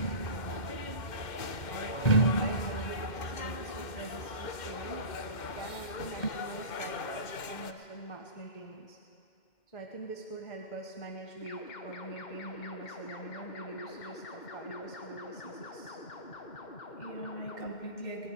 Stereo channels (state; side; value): late; right; 2.1 ms